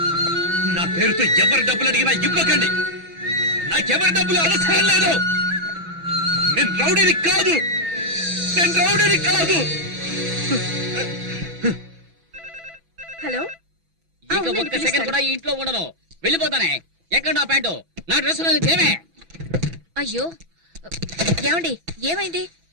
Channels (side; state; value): left; late; 6.0 ms